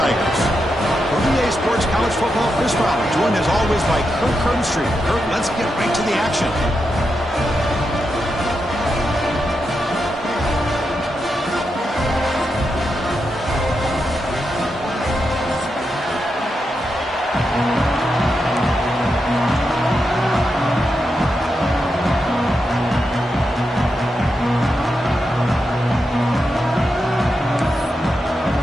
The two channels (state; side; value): normal; both; correlation 0.86